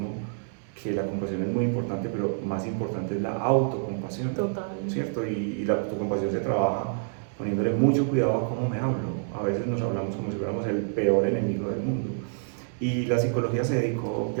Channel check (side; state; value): left; silent; 60 dB below the other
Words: que la compasión es muy importante, pero más importante es la autocompasión. Total. ¿Cierto? Y la autocompasión se trabaja poniéndole mucho cuidado a cómo me hablo. A veces nos hablamos como si fuéramos el peor enemigo del mundo. Y la psicología se dedicó